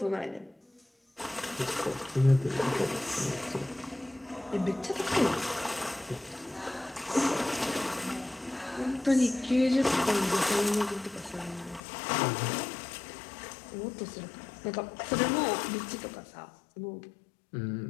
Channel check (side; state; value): right; drops out; at 11.8 s